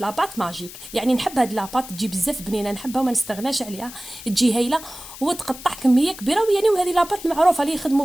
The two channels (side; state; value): left; noise; hiss, 14 dB below the sound